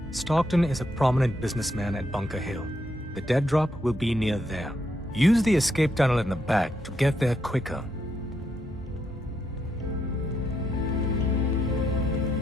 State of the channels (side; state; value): both; normal; correlation 0.79